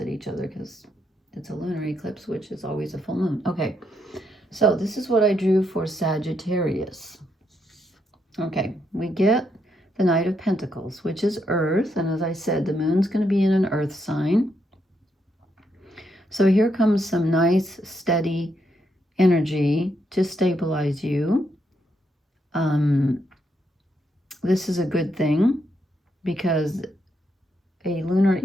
each other because it's a lunar eclipse, which is always a full moon. Okay, so this is what I drew for Sagittarius. Okay, we get the Knight of Pentacles, which is Earth, and as I said, the moon's going to be in an Earth sign. So here comes some nice, steady energy to stabilize you. This is a good thing because a lunar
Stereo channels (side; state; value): both; normal; correlation 0.78